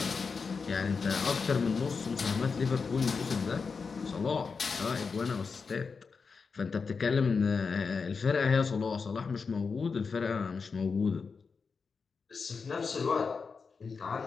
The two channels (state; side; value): quieter; right; 5.1 dB